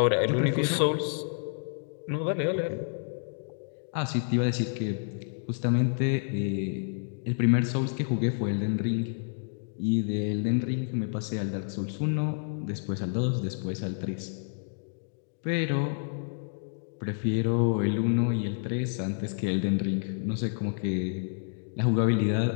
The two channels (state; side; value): silent; right; digital silence